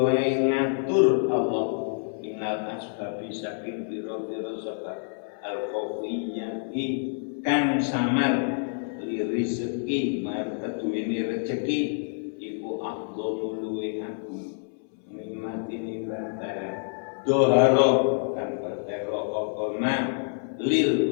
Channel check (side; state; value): right; silent; 60 dB below the other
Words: ngatur Allah ing minal asbabi saking pira-pira sebab al-khawiyati kang samar li rezeki mar keduwene rejeki iku afdhalu luwe agung nikmati nikmatan doharo kan pertero apa man